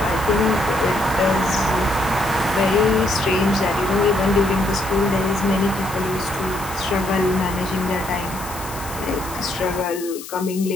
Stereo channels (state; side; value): noise; left; hiss, 13 dB below the sound